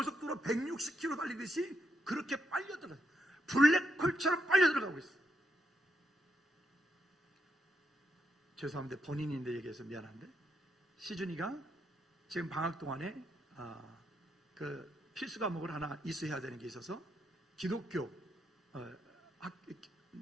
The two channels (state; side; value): normal; both; correlation 0.80